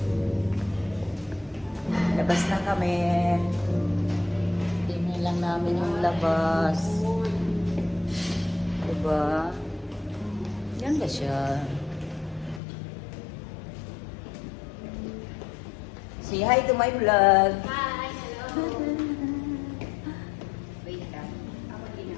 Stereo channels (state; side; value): drops out; right; at 12.6 s